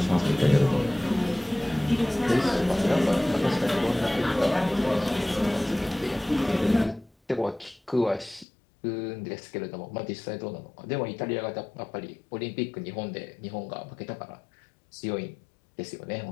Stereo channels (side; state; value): right; drops out; at 8.5 s